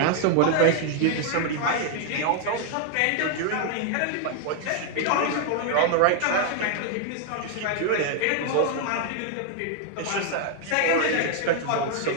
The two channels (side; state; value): both; different; correlation 0.00